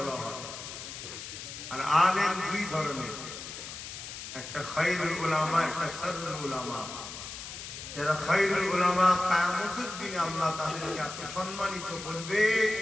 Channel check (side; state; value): left; noise; hiss, 10 dB below the sound